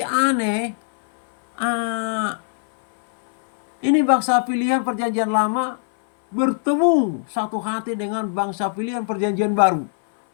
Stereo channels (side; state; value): right; silent; 60 dB below the other